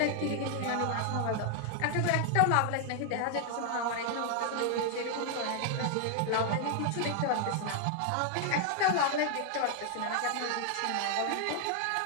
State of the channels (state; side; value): different; both; correlation 0.00